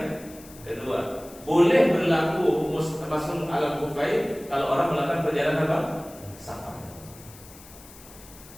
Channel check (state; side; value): noise; left; hiss, 20 dB below the sound